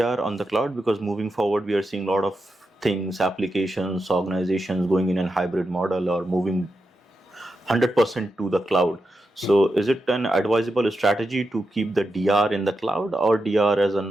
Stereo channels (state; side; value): normal; both; correlation 0.88